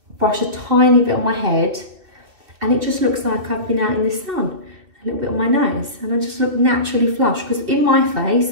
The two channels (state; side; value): late; left; 2.6 ms